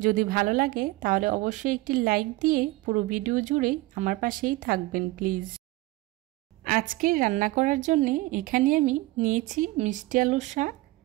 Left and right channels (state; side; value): quieter; left; 19.7 dB